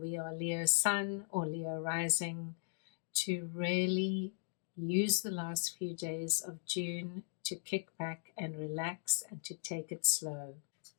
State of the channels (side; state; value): right; silent; digital silence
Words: are Leo Sun or Leo Rising, to really use the last few days of June to kick back and relax and to take it slow.